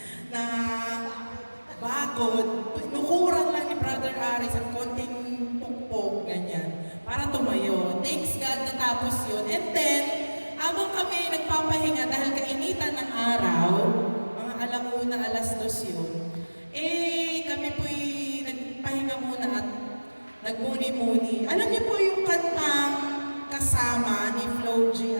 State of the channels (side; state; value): both; inverted; correlation -1.00